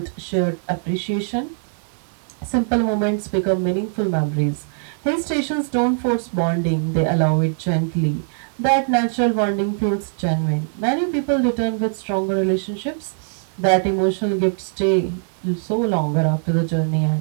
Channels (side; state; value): left; silent; 65 dB below the other